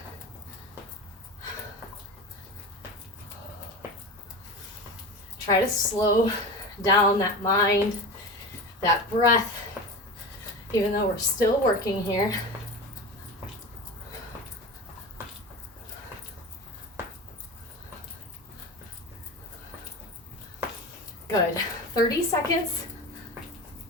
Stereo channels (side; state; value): both; normal; correlation 0.28